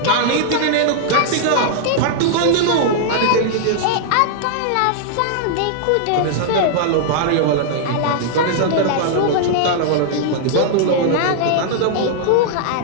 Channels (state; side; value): different; both; correlation -0.01